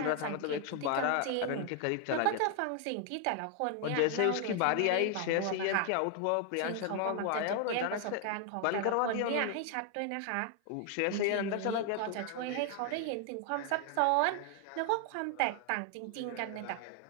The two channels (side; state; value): both; different; correlation 0.00